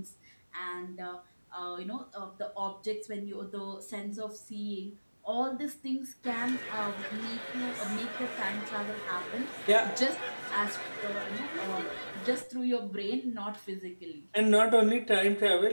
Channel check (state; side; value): inverted; both; correlation -1.00